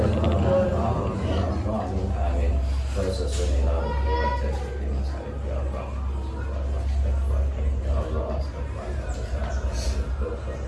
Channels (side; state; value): both; identical; correlation 1.00